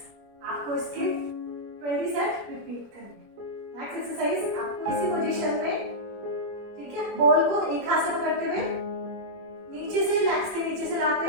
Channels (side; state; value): left; late; 21 ms